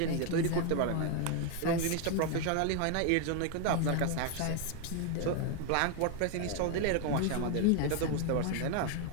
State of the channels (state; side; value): different; both; correlation 0.01